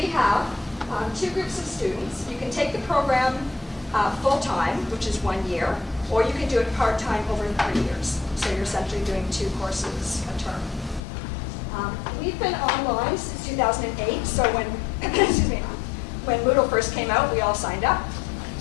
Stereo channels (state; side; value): drops out; right; at 11.0 s